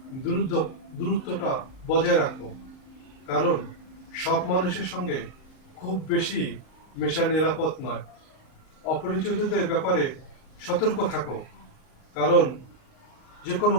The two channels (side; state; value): right; late; 38 ms